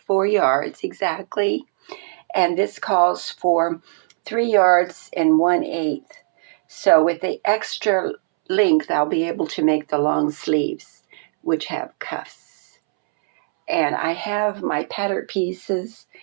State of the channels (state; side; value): silent; left; 65 dB below the other